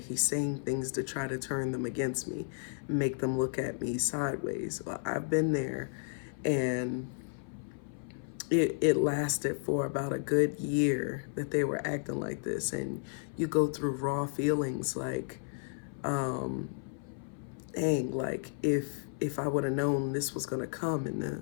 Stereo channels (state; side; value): silent; right; 56 dB below the other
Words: he's saying things to try to turn them against me, make them look at me sideways? Well, I've been there, and it lasted for about a good year that they were acting like this. And you go through raw feelings like, dang, like if I would have known this was gonna come in